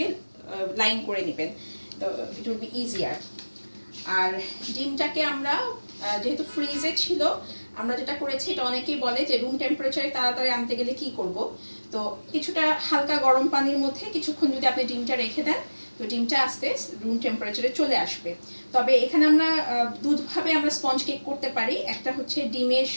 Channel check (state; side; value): inverted; both; correlation -1.00